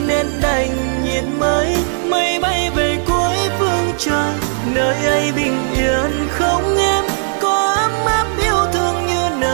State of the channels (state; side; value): silent; left; digital silence